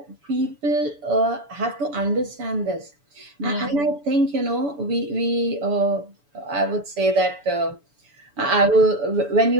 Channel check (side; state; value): left; late; 6.9 ms